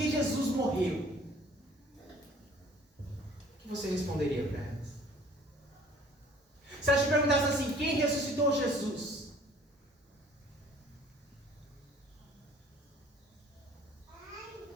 Jesus morreu? O que você responderia para elas? Se elas te perguntassem assim, quem ressuscitou Jesus?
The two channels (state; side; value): normal; both; correlation 0.53